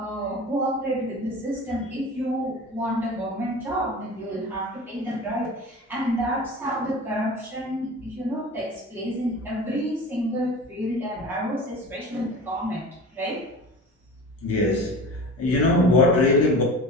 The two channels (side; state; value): both; normal; correlation 0.36